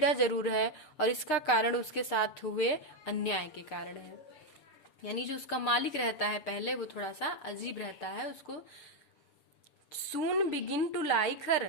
जरूर है और इसका कारण उसके साथ हुए अन्याय के कारण है। यानी जो उसका मालिक रहता है पहले, वो थोड़ा सा अजीब रहता है, उसको soon begin to like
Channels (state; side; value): late; right; 6.9 ms